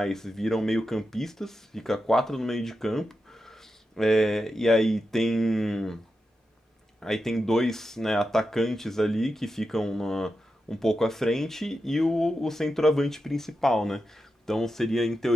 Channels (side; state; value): both; normal; correlation 0.89